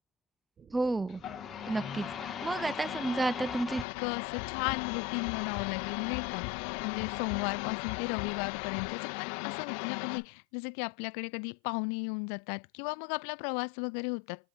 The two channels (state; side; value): drops out; right; at 3.9 s